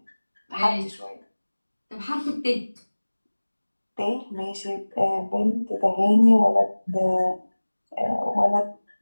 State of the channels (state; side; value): inverted; both; correlation -1.00